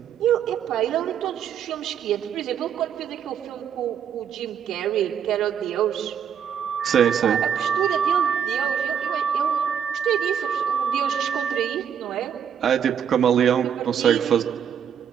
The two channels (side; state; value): left; quieter; 8.3 dB